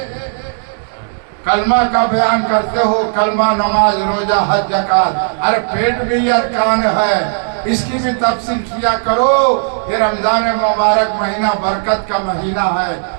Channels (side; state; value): left; silent; digital silence